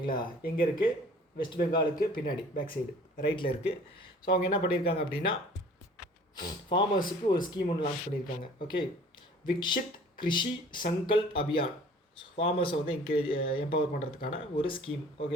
எங்கே இருக்குது? வெஸ்ட் பெங்காலுக்கு பின்னாடி பேக் சைடு ரைட்டில் இருக்குது. ஸோ அவங்க என்ன பண்ணியிருக்காங்க அப்படின்னா ஃபார்மர்ஸுக்கு ஒரு ஸ்கீம் ஒன்று லான்ச் பண்ணியிருக்காங்க. ஓகே, விக்ஷித் கிருஷி சங்கல்ப் அபியான். ஃபார்மர்ஸை வந்து எம்பவர் பண்ணுறதுக்கான ஒரு ஸ்கீம்.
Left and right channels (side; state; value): both; normal; correlation 0.49